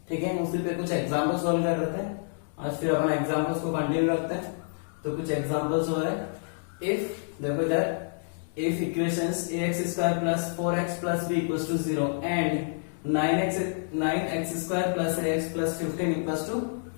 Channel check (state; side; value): silent; right; digital silence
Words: ठीक है, उसी पे कुछ एग्जांपल सॉल्व कर रहे थे। आज फिर अपन एग्जांपल्स को कंटिन्यू रखते हैं। तो कुछ एग्जांपल्स हो रहे, इफ देखो इधर if equations ax square plus 4x plus b equals to 0 and 9x square plus ax plus 15 equals to